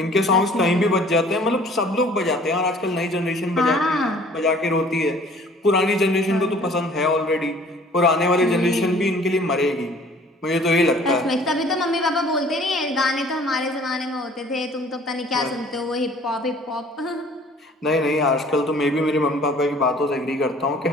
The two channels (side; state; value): both; normal; correlation 0.53